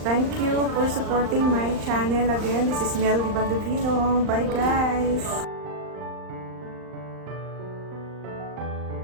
Thank you for supporting my channel again. This is Mel Di Baldovino. Bye, guys.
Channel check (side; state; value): left; late; 39 ms